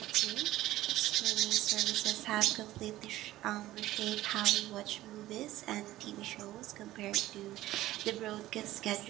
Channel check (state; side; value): quieter; left; 15.6 dB